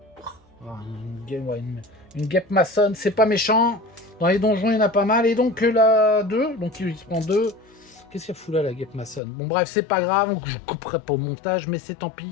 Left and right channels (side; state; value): right; drops out; at 9.2 s